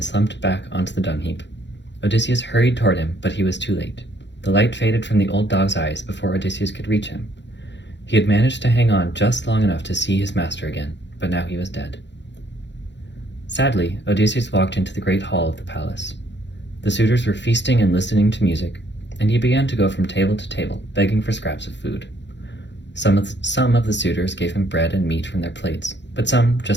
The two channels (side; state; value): right; late; 0.52 ms